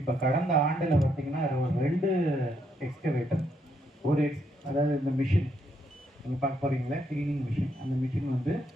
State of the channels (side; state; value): both; normal; correlation 0.75